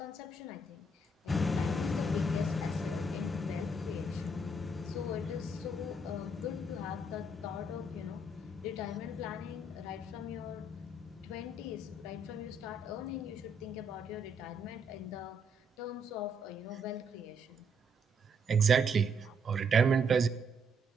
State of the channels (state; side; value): normal; both; correlation 0.72